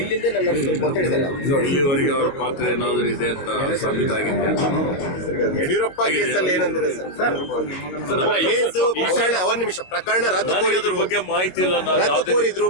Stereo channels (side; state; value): right; late; 21 ms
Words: ನಡೆಸಬೇಕು ಅಂತ ಹೇಳಿದ್ದಾರೆ. ಇಲ್ಲಿವರೆಗೆ ಅವರ ಪಾತ್ರ ಏನಾದರೂ ಇದೆ ಅಂತ ಸಾಬೀತಾಗಿದೆ. ಯಡಿಯೂರಪ್ಪ ಕೇಸಲ್ಲಿ ಏನಂದ್ರೆ ಒಂದ್ ನಿಮಿಷ ಪ್ರಕರಣ ರದ್ದು ಬಗ್ಗೆ ಮಾಹಿತಿ ಇಲ್ಲ. ರದ್ದು ಕೋರಿದ್ರು,